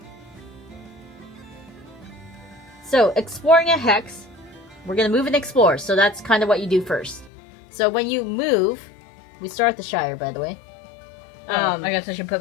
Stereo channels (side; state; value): right; drops out; at 7.3 s